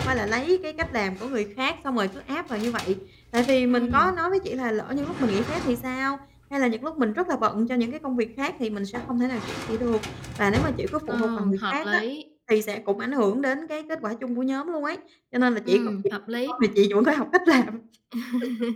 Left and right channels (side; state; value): both; identical; correlation 1.00